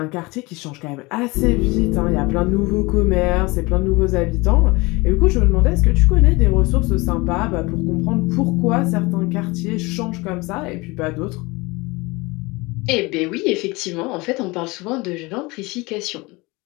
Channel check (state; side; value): quieter; right; 24.1 dB